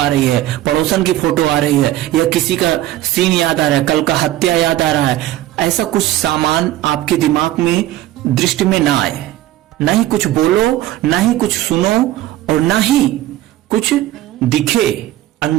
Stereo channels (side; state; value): left; quieter; 14.4 dB